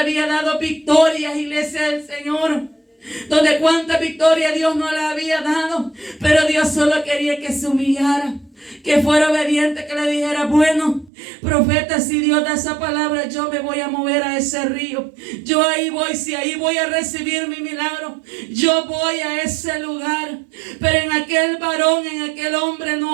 dado victorias, iglesia del Señor, donde cuánta victoria Dios no le había dado, pero Dios solo quería que se humillara, que fuera obediente, que le dijera, bueno, profeta, si Dios da esa palabra, yo me voy a mover a ese río. Yo ahí voy, si ahí voy a recibir mi milagro, yo voy a ese lugar. Pero en aquel varón, en aquel hombre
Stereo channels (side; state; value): left; drops out; at 11.1 s